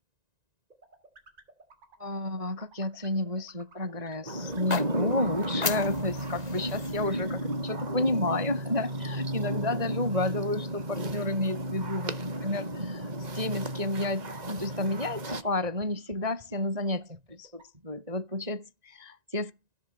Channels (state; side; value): late; left; 1.9 ms